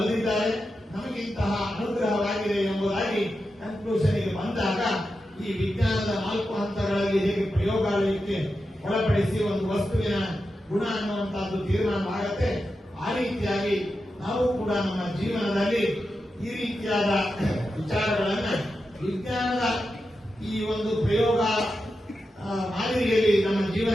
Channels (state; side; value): normal; both; correlation 0.89